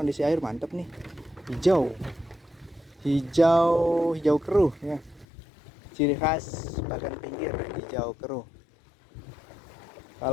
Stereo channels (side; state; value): right; drops out; at 5.2 s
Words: air mantap nih, hijau keruh ya, ciri khas bagan pinggir, hijau keruh.